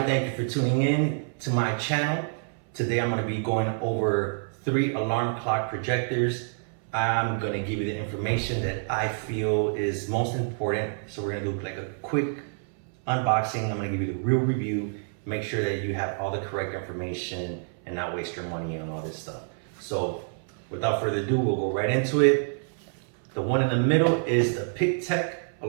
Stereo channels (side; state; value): left; silent; 59 dB below the other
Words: thank you for tuning in to my channel. Today I'm going to be going over 3 alarm clock projectors. I'm going to give you the information that I feel is most important. So we're going to do like a quick unboxing. I'm going to give you the real review, make sure that you have all the correct information and not waste your money on all this stuff. So without further ado, we'll go right into it. The one in the middle is the Pictek